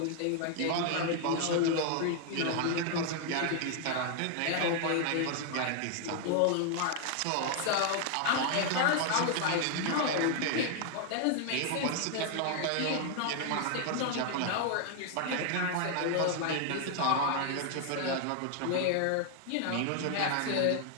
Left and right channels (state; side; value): different; both; correlation 0.00